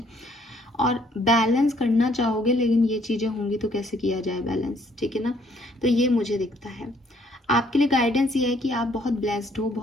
और बैलेंस करना चाहोगे, लेकिन ये चीज़ें होंगी तो कैसे किया जाए बैलेंस, ठीक है ना। तो ये मुझे दिखता है। आपके लिए गाइडेंस ये है कि आप बहुत ब्लेस्ड हो,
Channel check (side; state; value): both; normal; correlation 0.65